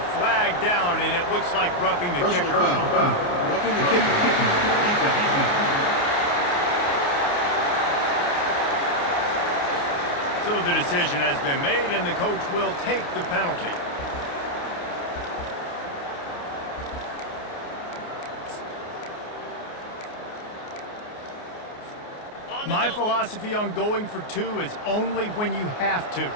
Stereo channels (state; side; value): late; right; 28 ms